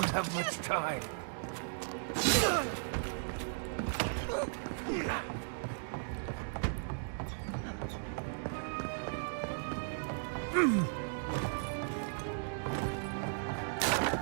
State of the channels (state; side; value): silent; left; digital silence